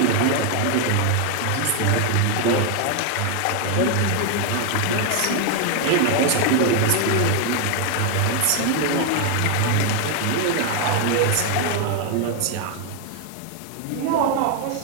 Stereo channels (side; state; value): both; different; correlation 0.01